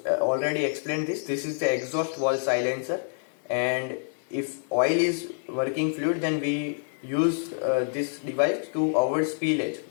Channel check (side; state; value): right; silent; digital silence